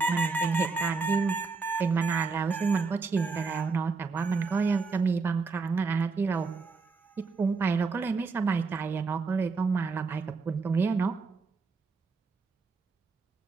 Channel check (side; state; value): left; quieter; 4.4 dB